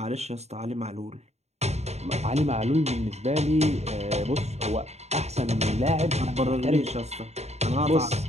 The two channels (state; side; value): late; left; 0.32 ms